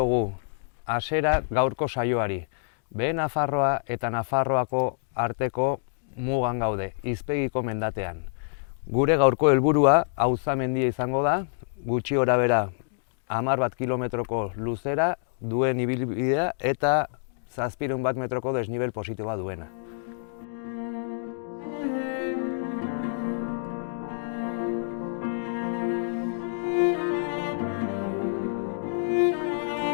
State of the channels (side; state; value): right; silent; digital silence